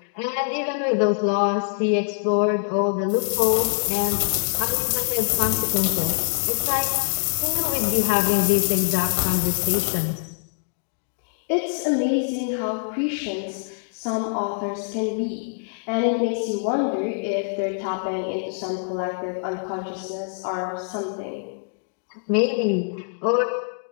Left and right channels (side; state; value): right; silent; digital silence